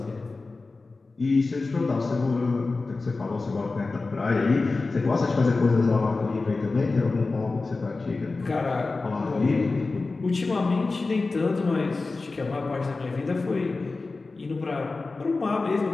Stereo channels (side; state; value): right; quieter; 3.7 dB